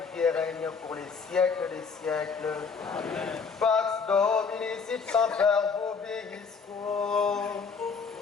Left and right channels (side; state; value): right; quieter; 5.4 dB